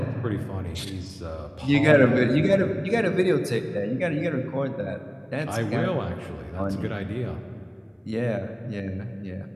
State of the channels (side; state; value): both; identical; correlation 1.00